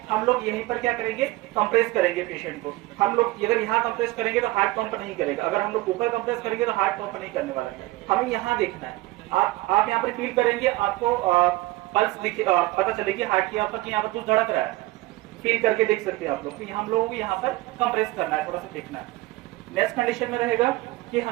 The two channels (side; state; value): left; quieter; 19.2 dB